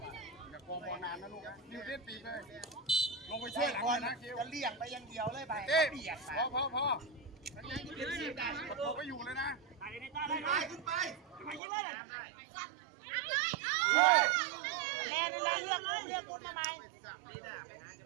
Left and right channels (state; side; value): drops out; left; at 11.6 s